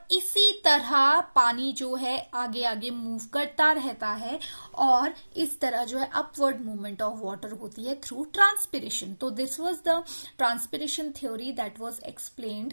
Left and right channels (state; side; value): inverted; both; correlation -1.00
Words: इसी तरह पानी जो है आगे आगे मूव करता रहता है, और इस तरह जो है अपवर्ड मूवमेंट ऑफ वाटर होती है थ्रू ट्रांसपिरेशन। तो this was the transpiration theory that was